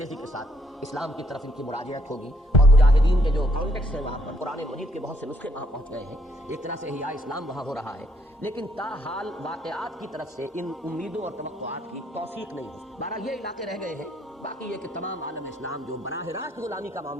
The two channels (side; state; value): both; normal; correlation 0.70